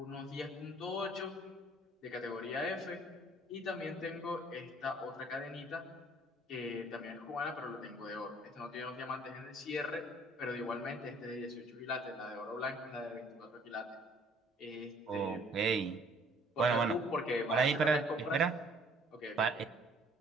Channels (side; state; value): both; normal; correlation 0.58